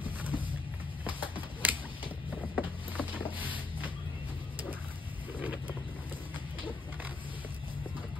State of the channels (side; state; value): right; quieter; 3.6 dB